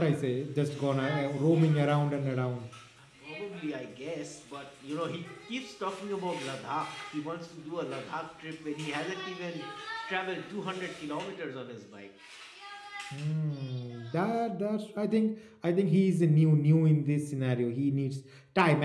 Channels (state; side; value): identical; both; correlation 1.00